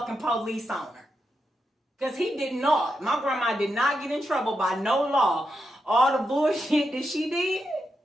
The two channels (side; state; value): both; normal; correlation 0.86